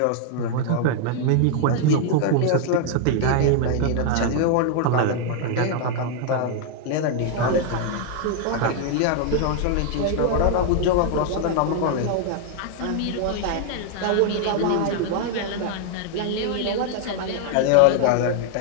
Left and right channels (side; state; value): both; different; correlation 0.00